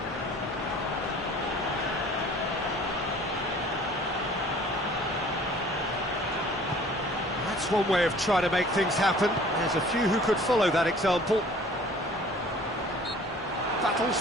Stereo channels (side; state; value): both; normal; correlation 0.50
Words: That's one way of trying to make things happen. There's a few who could follow that example. Battles